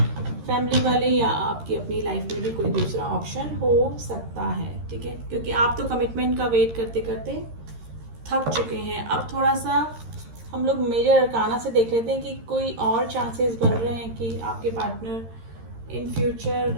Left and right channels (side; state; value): left; late; 13 ms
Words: फैमिली वाले या आपकी अपनी लाइफ में भी कोई दूसरा ऑप्शन हो सकता है, ठीक है, क्योंकि आप तो कमिटमेंट का वेट करते करते थक चुके हैं। अब थोड़ा सा हम लोग मेजर अरकाना से देख लेते हैं कि कोई और चांसेस बन रहे हैं कि आपके पार्टनर इन